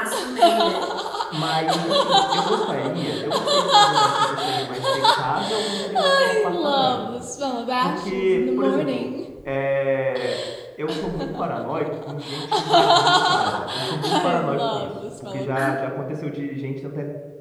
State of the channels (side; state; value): both; identical; correlation 1.00